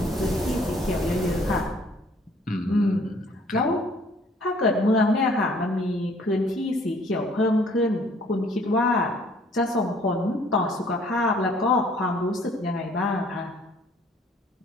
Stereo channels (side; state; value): both; normal; correlation 0.58